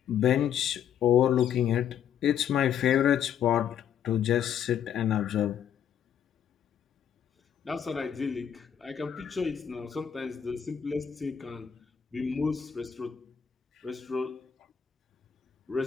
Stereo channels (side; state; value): right; quieter; 8.7 dB